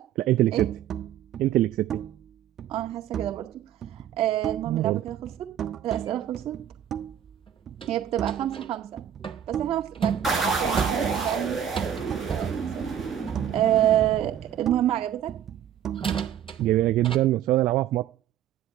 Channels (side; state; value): left; quieter; 10.3 dB